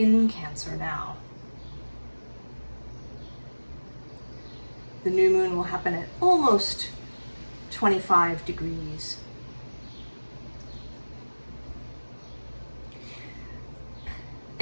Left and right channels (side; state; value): both; inverted; correlation -1.00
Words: Cancer now. The new moon will happen at almost 25 degrees.